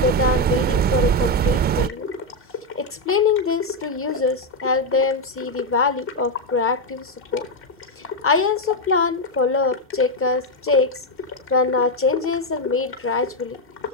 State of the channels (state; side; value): normal; both; correlation 0.04